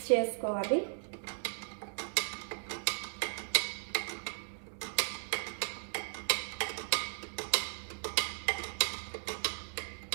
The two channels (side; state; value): left; silent; digital silence